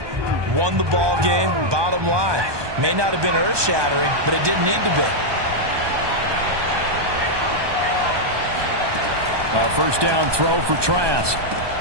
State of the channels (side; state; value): left; late; 1.2 ms